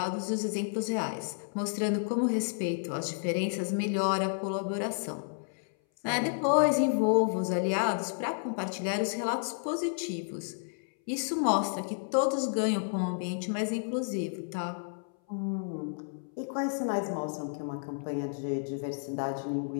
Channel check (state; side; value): silent; right; 57 dB below the other